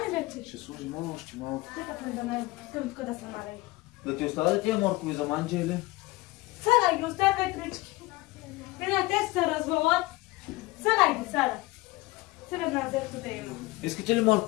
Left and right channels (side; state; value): right; quieter; 20.8 dB